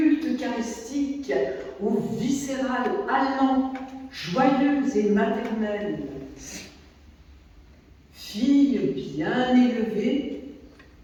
eucharistique, ou viscéral, allant, joyeuse et maternelle. Fille bien élevée,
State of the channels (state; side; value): identical; both; correlation 1.00